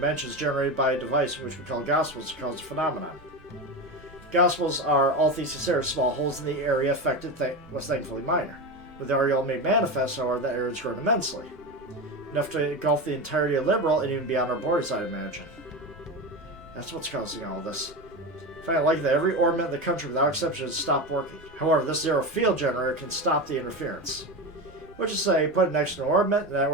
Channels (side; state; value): both; normal; correlation 0.20